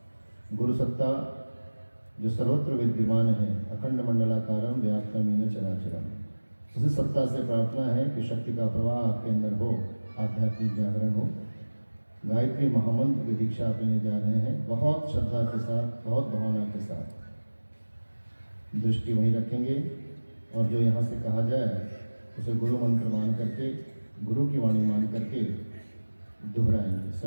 गुरु सत्ता जो सर्वत्र विद्यमान है, अखंड मंडलाकारम व्याप्तमीन चराचरम, उसी सत्ता से प्रार्थना है कि शक्ति का प्रवाह आपके अंदर हो, आध्यात्मिक जागरण हो। गायत्री महामंत्र की दीक्षा आप लेने जा रहे हैं। बहुत श्रद्धा के साथ, बहुत भावना के साथ दृष्टि वहीं रखेंगे और जो यहाँ से कहा जाए उसे गुरु मंत्र मान करके, गुरु की वाणी मान करके दोहराएंगे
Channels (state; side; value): inverted; both; correlation -1.00